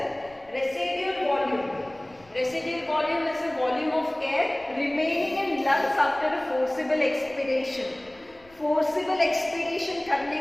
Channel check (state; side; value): noise; left; rumble, 28 dB below the sound